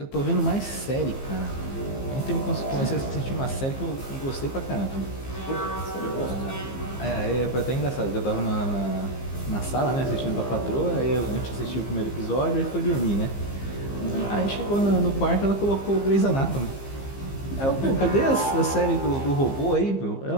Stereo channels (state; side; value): late; right; 15 ms